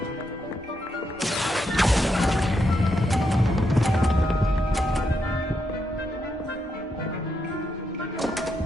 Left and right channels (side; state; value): both; normal; correlation 0.81